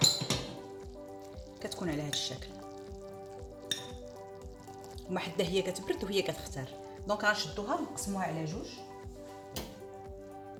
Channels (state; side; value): identical; both; correlation 1.00